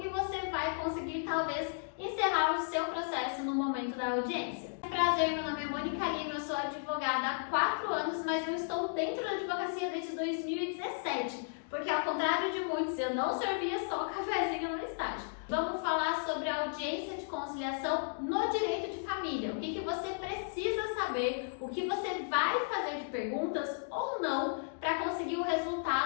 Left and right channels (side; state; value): right; silent; digital silence